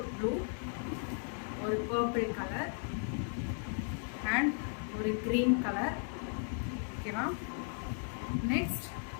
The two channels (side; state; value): right; silent; 54 dB below the other